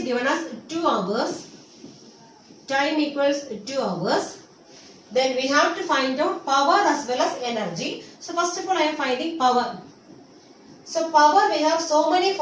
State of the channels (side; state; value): both; identical; correlation 1.00